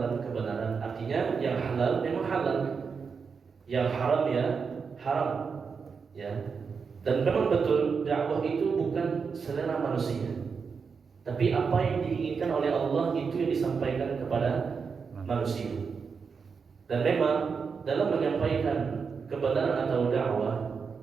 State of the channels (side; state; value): left; quieter; 5.6 dB